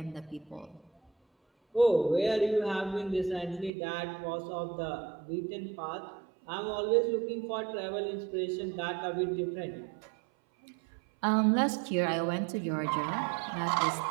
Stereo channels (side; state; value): left; drops out; at 3.7 s